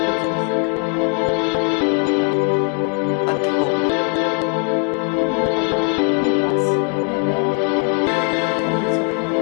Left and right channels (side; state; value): right; quieter; 37.8 dB